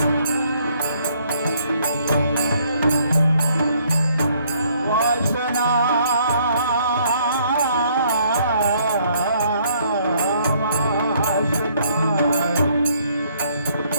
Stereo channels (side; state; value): both; inverted; correlation -0.66